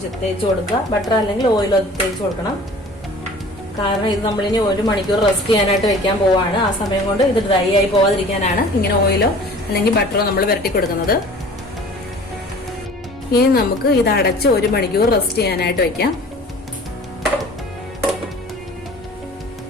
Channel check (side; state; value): both; normal; correlation 0.45